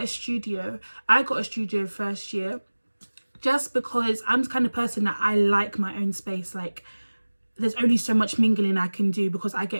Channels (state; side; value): inverted; both; correlation -1.00